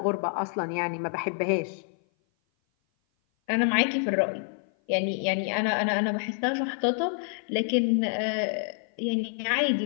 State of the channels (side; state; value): right; silent; 56 dB below the other